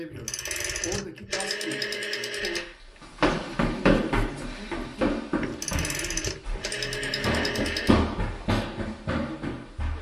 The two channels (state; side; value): identical; both; correlation 1.00